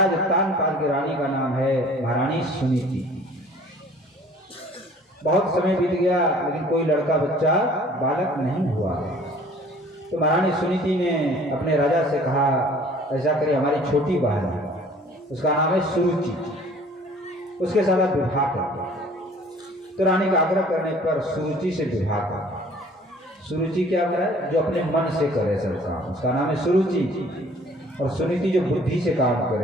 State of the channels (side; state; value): both; normal; correlation 0.52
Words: उत्तानपाद की रानी का नाम है महारानी सुनीति। बहुत समय बीत गया लेकिन कोई लड़का बच्चा बालक नहीं हुआ। तो महारानी सुनीति ने अपने राजा से कहा ऐसा करिए हमारी छोटी बहन है, उसका नाम है सुरुचि, उसके साथ आप विवाह कर। तो रानी का आग्रह करने पर सुरुचि से विवाह कर। सुरुचि क्या करे? जो अपने मन से करे सब काम, उसका नाम है सुरुचि। और सुनीति जो बुद्धि से काम